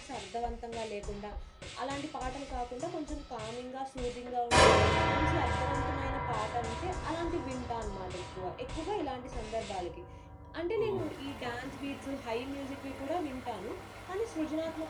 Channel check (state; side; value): identical; both; correlation 1.00